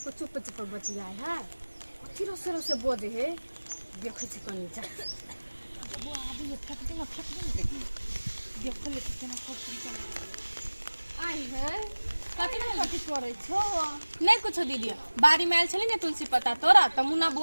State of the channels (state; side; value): inverted; both; correlation -1.00